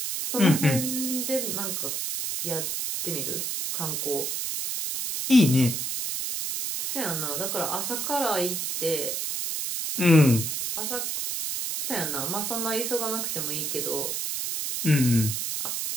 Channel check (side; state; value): right; noise; hiss, 2 dB below the sound